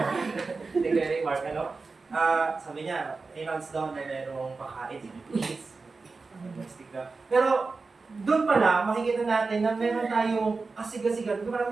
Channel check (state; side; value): quieter; left; 4.1 dB